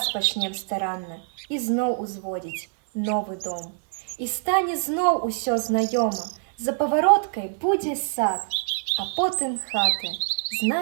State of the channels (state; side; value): silent; left; 61 dB below the other